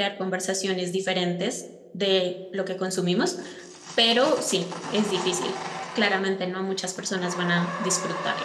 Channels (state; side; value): identical; both; correlation 1.00